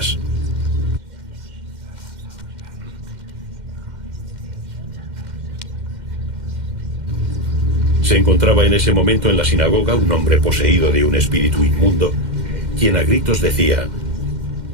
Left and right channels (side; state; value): left; late; 2.1 ms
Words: Se encontraba en ese momento en la sinagoga un hombre poseído de un espíritu inmundo, quien a gritos decía: